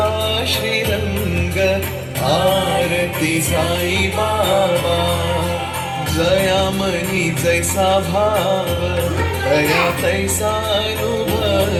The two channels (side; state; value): both; identical; correlation 1.00